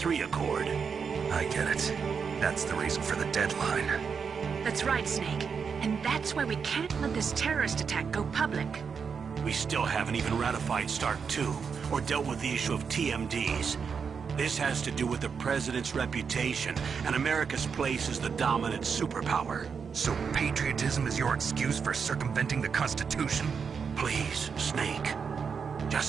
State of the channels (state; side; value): quieter; left; 6.1 dB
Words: Accord. I get it. That's the reason for the deadline. That's right, Snake. And that's why we can't let this terrorist attack go public. We still haven't even ratified START 2, or dealt with the issue of TMDs. This has to do with the president's reputation and America's place as the dominant superpower. So patriotism is your excuse for circumventing the Constitution? Please, Snake.